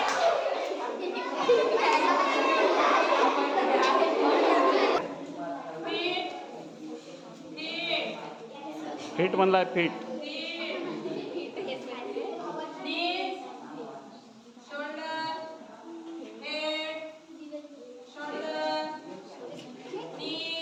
Feet म्हणलाय फिट.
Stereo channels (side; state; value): both; identical; correlation 1.00